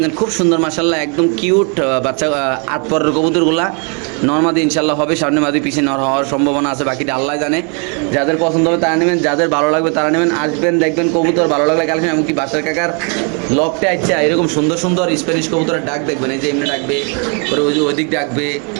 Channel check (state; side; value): quieter; left; 37.5 dB